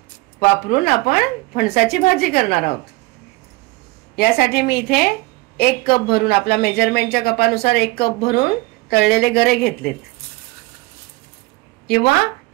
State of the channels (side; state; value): left; quieter; 23.1 dB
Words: वापरून आपण फणसाची भाजी करणार आहोत। यासाठी मी इथे 1 कप भरून, आपला मेजरमेंटच्या कपानुसार 1 कप भरून तळलेले गरे घेतलेत, किंवा